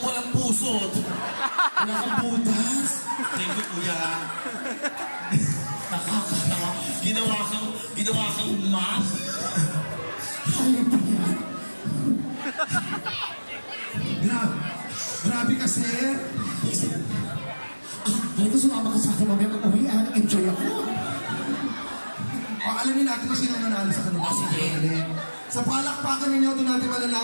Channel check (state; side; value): inverted; both; correlation -1.00